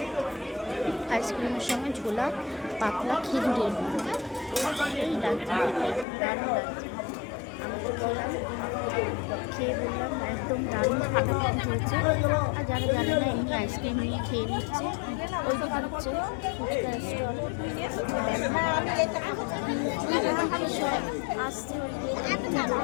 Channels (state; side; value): drops out; right; at 6.1 s